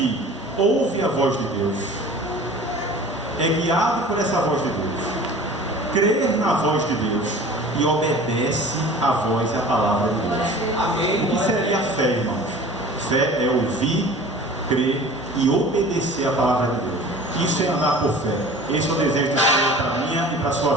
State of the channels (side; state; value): both; normal; correlation 0.42